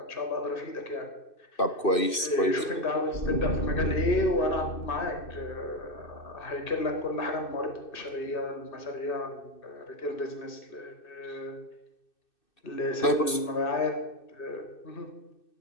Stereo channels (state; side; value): late; right; 2.6 ms